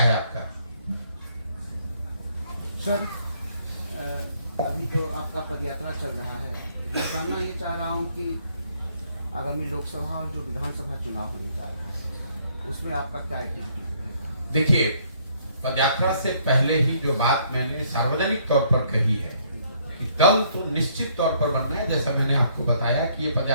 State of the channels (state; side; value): inverted; both; correlation -0.66